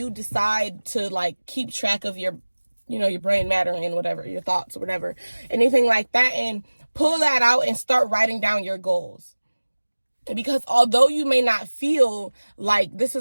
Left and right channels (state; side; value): inverted; both; correlation -1.00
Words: decide to, like, keep track of your, your brain matter and whatever, your thoughts or whatever, anything like that, and pull that out and start writing down your goals. Because although you may not feel like this